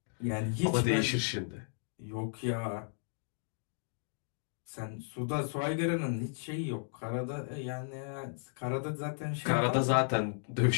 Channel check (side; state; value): right; silent; digital silence